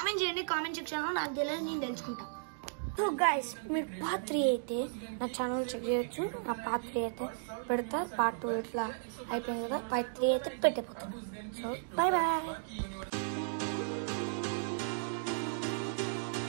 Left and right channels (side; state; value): left; silent; digital silence